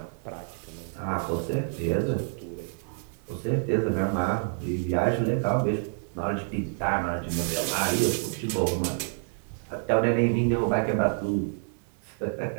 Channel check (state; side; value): silent; left; 58 dB below the other